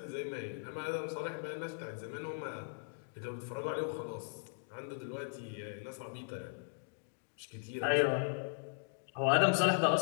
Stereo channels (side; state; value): right; silent; digital silence